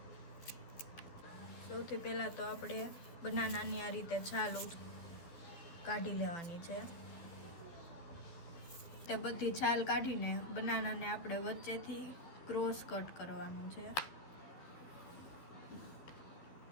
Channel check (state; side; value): late; right; 12 ms